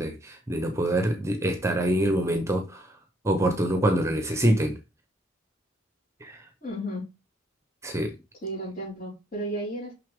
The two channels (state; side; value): normal; both; correlation 0.71